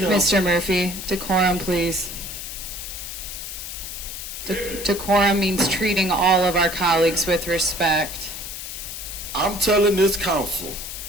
Mr. Murphy, decorum, please. Decorum means treating all of our colleagues with respect. I'm telling this council,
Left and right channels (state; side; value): noise; left; hiss, 8 dB below the sound